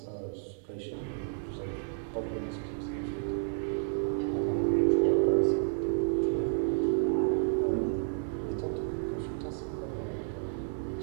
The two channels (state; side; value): silent; left; digital silence